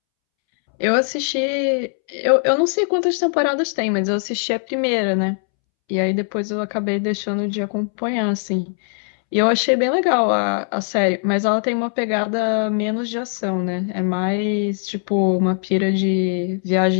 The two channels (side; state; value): right; silent; 66 dB below the other